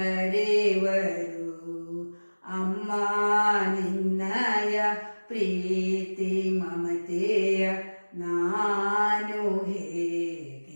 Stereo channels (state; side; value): inverted; both; correlation -1.00